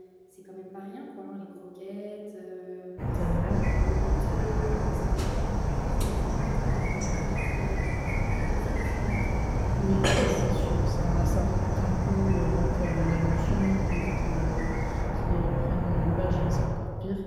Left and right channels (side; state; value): both; identical; correlation 1.00